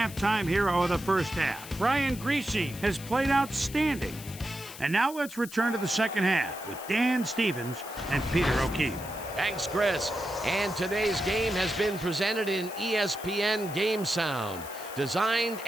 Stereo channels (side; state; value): left; noise; hiss, 14 dB below the sound